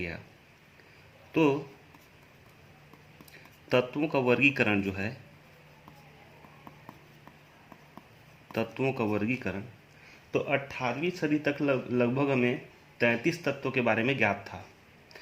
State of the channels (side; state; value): both; identical; correlation 1.00